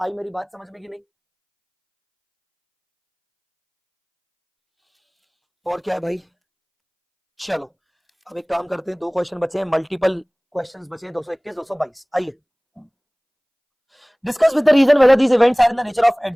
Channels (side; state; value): both; identical; correlation 1.00